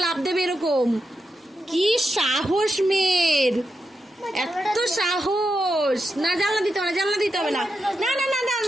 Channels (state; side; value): normal; both; correlation 0.87